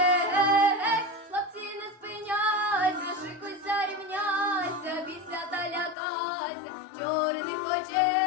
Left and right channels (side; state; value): right; drops out; at 6.0 s